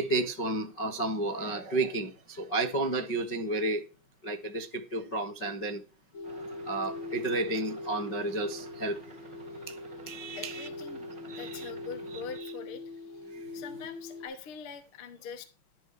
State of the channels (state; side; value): late; right; 5.4 ms